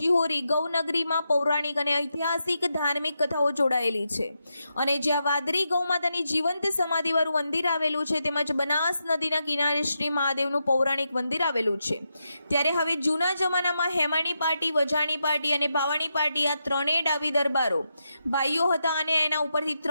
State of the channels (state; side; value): inverted; both; correlation -0.86